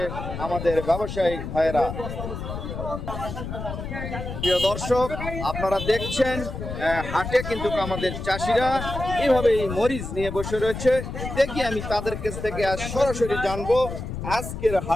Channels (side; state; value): left; noise; rumble, 7 dB below the sound